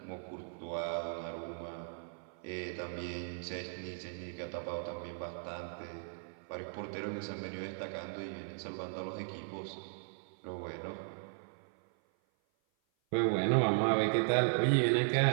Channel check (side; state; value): left; silent; 53 dB below the other